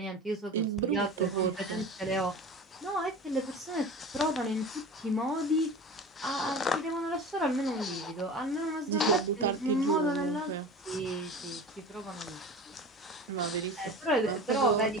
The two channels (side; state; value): both; normal; correlation 0.34